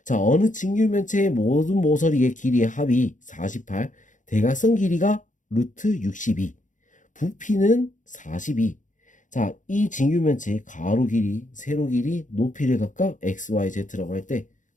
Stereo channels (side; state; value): right; late; 0.37 ms